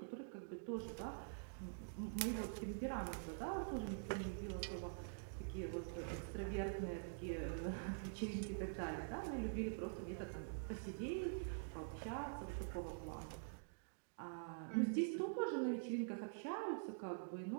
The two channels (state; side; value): silent; left; digital silence